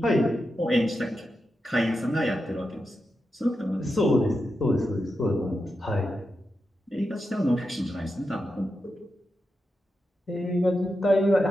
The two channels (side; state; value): both; normal; correlation 0.88